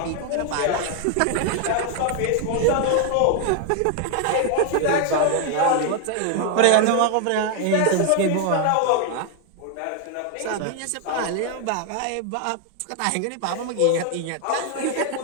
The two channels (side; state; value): both; different; correlation 0.00